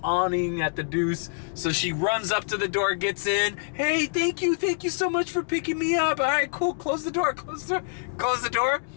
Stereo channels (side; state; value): right; silent; digital silence